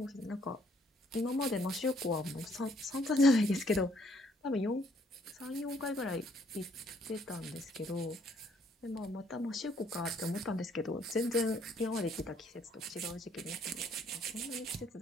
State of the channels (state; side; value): normal; both; correlation 0.66